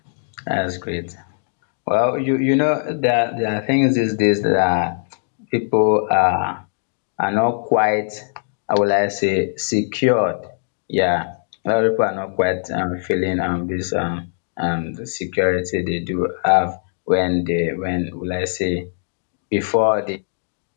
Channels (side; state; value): right; silent; digital silence